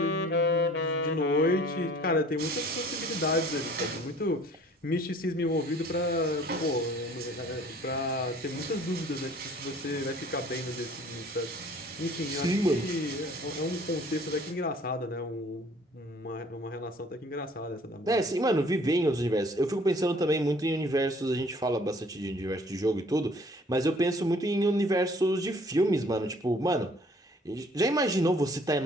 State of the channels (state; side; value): normal; both; correlation 0.54